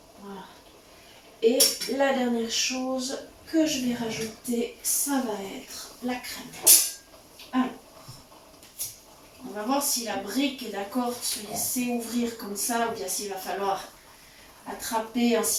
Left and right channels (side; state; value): both; identical; correlation 1.00